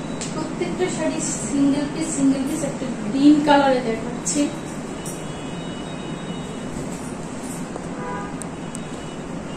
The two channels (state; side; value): identical; both; correlation 1.00